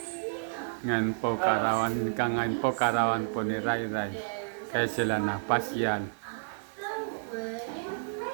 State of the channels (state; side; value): silent; left; digital silence